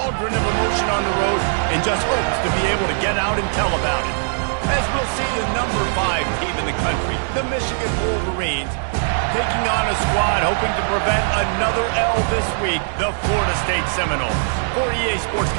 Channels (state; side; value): silent; left; digital silence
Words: of emotion on the road and just hopes to be able to get out and tell about it. As we'll see the number 5 team in the country, the Michigan Wolverines, taking on a squad hoping to prevent another L this week, the Florida State Seminoles. For EA Sports